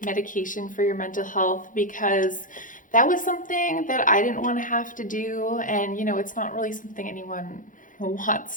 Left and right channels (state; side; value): late; right; 0.38 ms